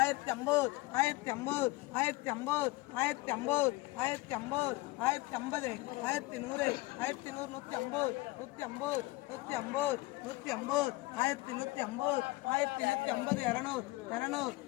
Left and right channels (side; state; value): right; quieter; 21.0 dB